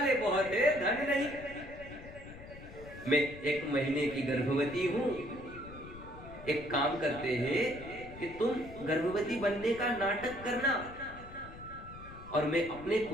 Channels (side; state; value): left; noise; rumble, 15 dB below the sound